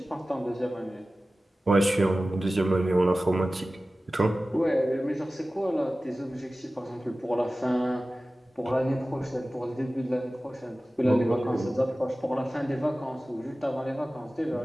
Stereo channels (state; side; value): normal; both; correlation 0.96